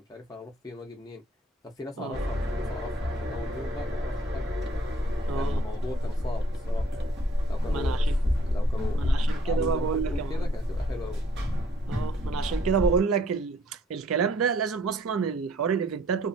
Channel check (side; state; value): both; normal; correlation 0.61